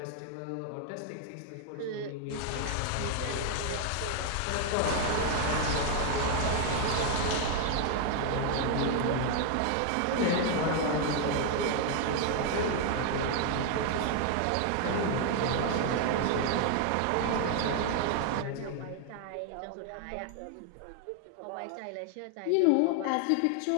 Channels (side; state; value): both; different; correlation 0.00